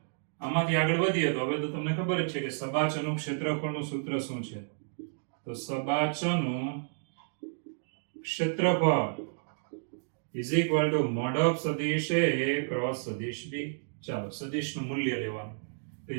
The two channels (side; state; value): left; silent; digital silence